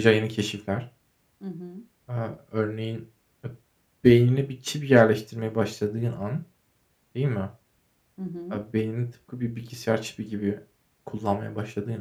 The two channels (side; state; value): both; identical; correlation 1.00